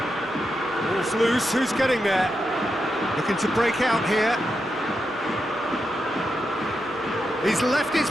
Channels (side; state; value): both; normal; correlation 0.86